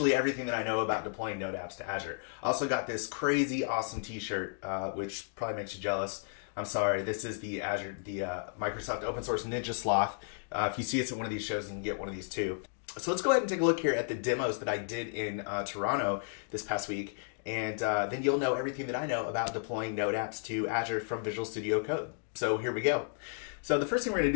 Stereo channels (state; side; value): silent; right; digital silence